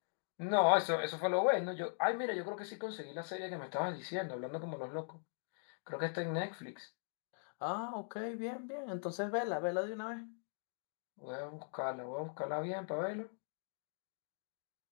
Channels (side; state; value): right; silent; digital silence